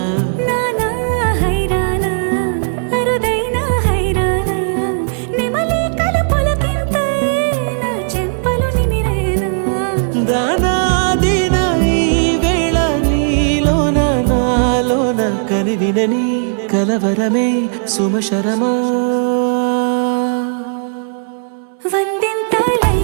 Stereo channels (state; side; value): silent; left; digital silence